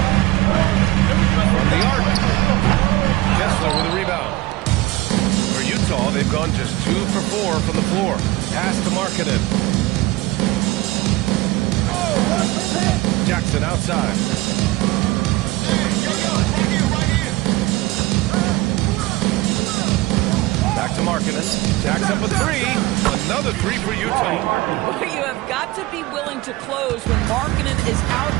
From the arc. Kessler with a rebound. For Utah, they've gone just 2 for 4 from the floor. Pass to Markkanen. Jackson outside. Back to Markkanen. Jacks up a 3. Another 3 for Utah. You have got to be willing to close when Markkanen is out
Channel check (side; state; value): left; quieter; 19.2 dB